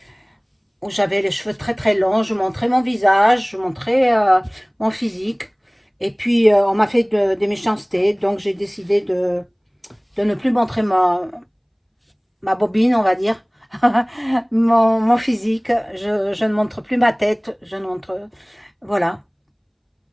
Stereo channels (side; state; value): both; identical; correlation 1.00